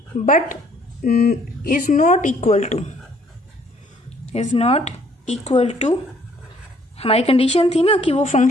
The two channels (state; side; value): normal; both; correlation 0.62